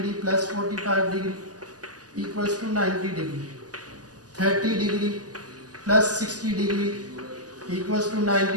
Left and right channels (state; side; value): late; left; 0.68 ms